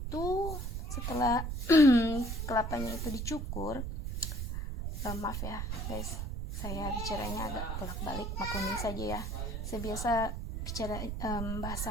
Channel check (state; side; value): noise; right; rumble, 4 dB below the sound